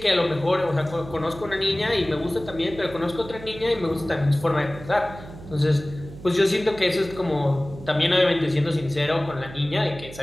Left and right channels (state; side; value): noise; right; hum, 15 dB below the sound